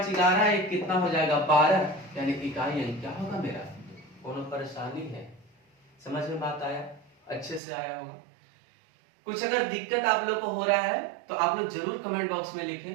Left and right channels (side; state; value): left; drops out; at 7.6 s